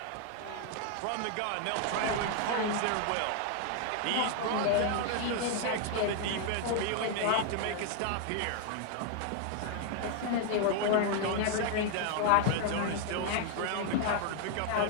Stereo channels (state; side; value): different; both; correlation 0.00